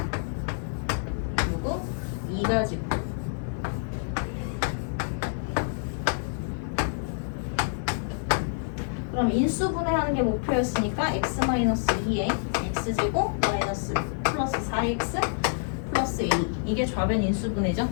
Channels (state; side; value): silent; right; digital silence